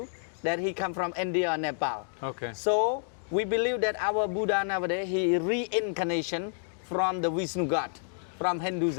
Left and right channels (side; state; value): right; silent; digital silence